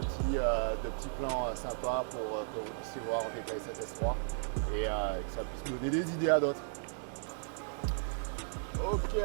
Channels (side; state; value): left; silent; digital silence